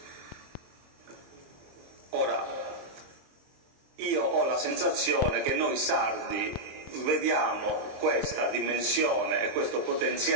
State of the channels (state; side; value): late; left; 23 ms